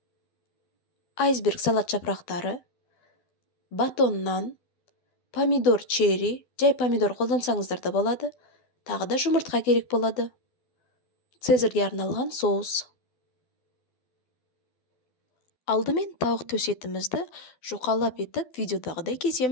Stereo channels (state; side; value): late; right; 12 ms